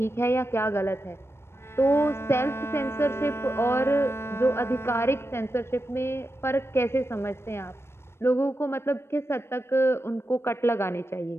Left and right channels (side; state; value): right; late; 0.12 ms